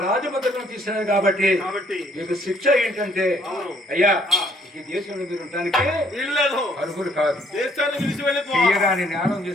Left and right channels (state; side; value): normal; both; correlation 0.65